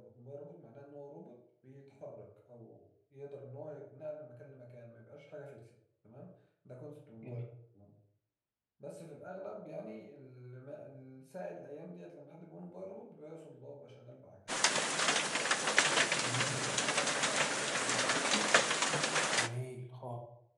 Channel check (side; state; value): both; identical; correlation 1.00